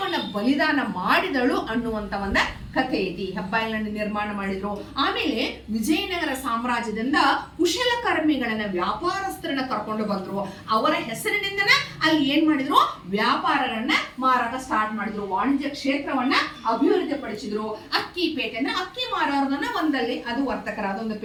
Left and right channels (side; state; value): both; identical; correlation 1.00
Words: ಬಲಿದಾನ ಮಾಡಿದಳು ಅನ್ನುವಂತ ಒಂದು ಕಥೆ ಐತಿ. ಹೆಬ್ಬಾಗಿಲನ್ನು ನಿರ್ಮಾಣ ಮಾಡಿದ್ರು. ಆಮೇಲೆ ವಿಜಯನಗರ ಸಾಮ್ರಾಜ್ಯದಿಂದ ಕುಶಲಕರ್ಮಿಗಳನ್ನ, ವ್ಯಾಪಾರಸ್ಥರನ್ನ ಕರ್ಕೊಂಡು ಮಾಡ್ಕೊಂಡು ಬಂದ್ರು. ಅವರ ಹೆಸರಿನಿಂದನ ಅಲ್ಲಿ ಏನ್ ಮಾಡಿದ್ರು, ವ್ಯಾಪಾರಗಳನ್ನ ಮಾರಾಟ ಸ್ಟಾರ್ಟ್ ಮಾಡಿದ್ರು, ವಾಣಿಜ್ಯ ಕ್ಷೇತ್ರವನ್ನ ಅಭಿವೃದ್ಧಿ ಪಡಿಸಿದ್ರು. ಅಕ್ಕಿ ಪೇಟೆ ಅಂದ್ರೆ ಅಕ್ಕಿ ಮಾರೋರ್ದನ್ನ ಒಂದಲ್ಲಿ ಅದು ವರ್ತಕರ ಅದೊಂದು